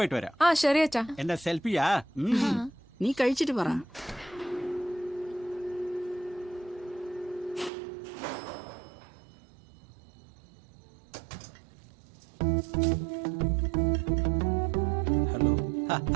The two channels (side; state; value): left; drops out; at 7.7 s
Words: വരാം. ശരി അച്ഛാ. എന്റെ സെൽഫിയാ. നീ കഴിച്ചിട്ട് പറ. ഹലോ